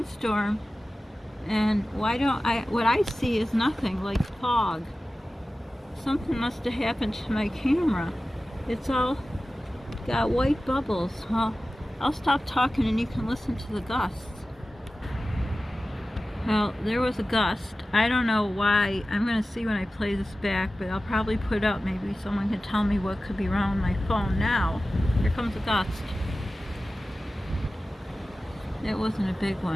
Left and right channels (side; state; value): both; normal; correlation 0.95